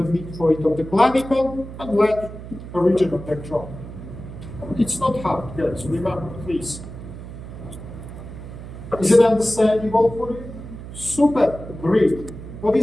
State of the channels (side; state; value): right; noise; hum, 12 dB below the sound